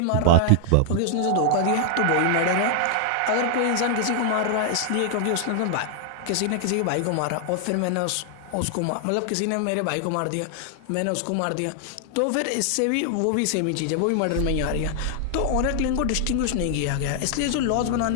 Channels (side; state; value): both; different; correlation 0.00